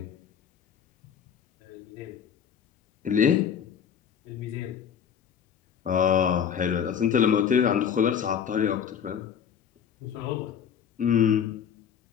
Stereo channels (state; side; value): quieter; right; 8.1 dB